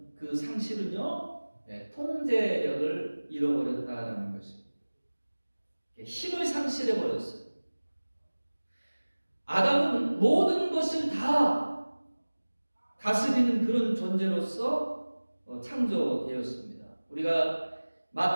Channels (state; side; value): inverted; both; correlation -1.00